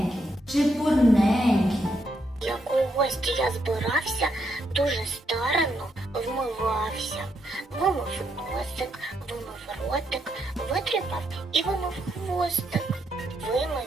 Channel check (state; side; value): normal; both; correlation 0.78